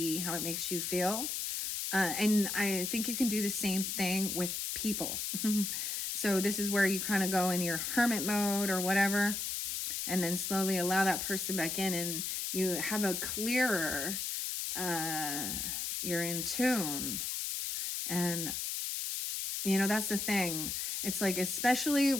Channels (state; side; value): noise; left; hiss, 2 dB below the sound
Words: how it makes you feel. And I think you can do the same thing with people. So this is where you kind of go in your hermit mode or whatever, and then slowly allow that person back in, and you have a clearer, you're in tune. And that's the thing. It's like, especially